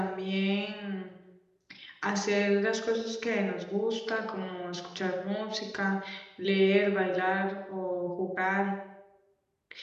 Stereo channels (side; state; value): both; identical; correlation 1.00